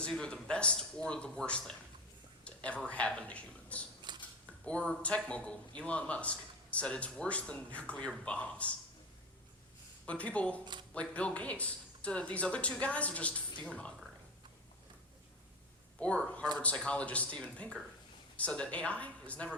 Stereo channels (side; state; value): both; normal; correlation 0.22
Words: either the best or the worst thing to ever happen to humans. Or tech mogul Elon Musk said it's worse than nuclear bombs. But people like Bill Gates said that these other two guys are just fear-mongering. Or Harvard psychologist Steven Pinker said that AI is never